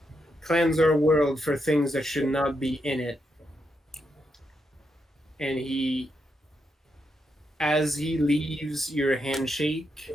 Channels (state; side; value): normal; both; correlation 0.82